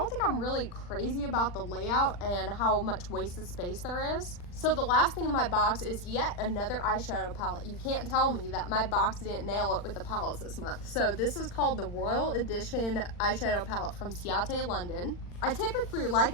think I'm really crazy about the layout and how much wasted space there is. So the last thing in my box is yet another eyeshadow palette. You can't tell me that my box didn't nail it with the palettes this month. So this is called the Royal Edition eyeshadow palette from Ciate London. I typically like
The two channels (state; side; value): late; right; 40 ms